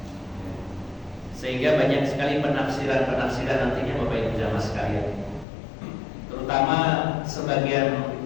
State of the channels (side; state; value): right; drops out; at 5.5 s